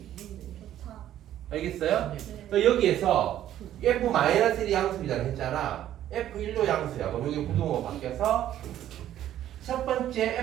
누군데? 좋다. 알겠어요? 네. 그러니까 여기에서 f-1이 양수이라고 했잖아. f1도 양수야. 그럼 여기 부동호가 바뀌어서 첫 번째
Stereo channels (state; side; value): quieter; left; 12.0 dB